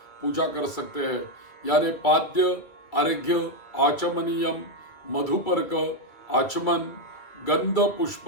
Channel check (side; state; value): right; late; 2.5 ms